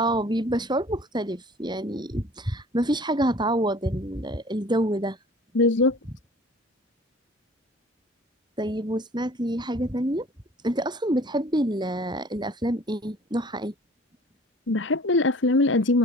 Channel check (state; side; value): normal; both; correlation 0.48